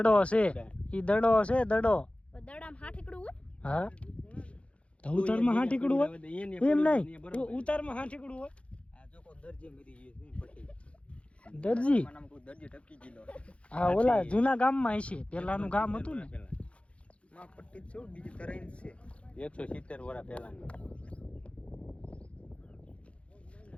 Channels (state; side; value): late; right; 0.061 ms